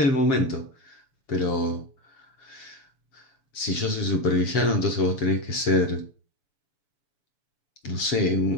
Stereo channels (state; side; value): late; right; 7.5 ms